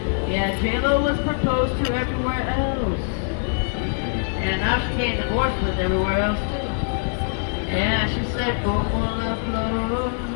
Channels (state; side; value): silent; right; 63 dB below the other